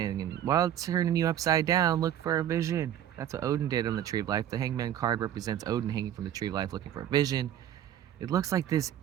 And while it's turning you upside down, look for a vision. That's what Odin did on the Tree of Life. The hangman card represents Odin hanging from the Tree of Life looking for a vision. It looks like this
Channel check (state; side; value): quieter; left; 10.8 dB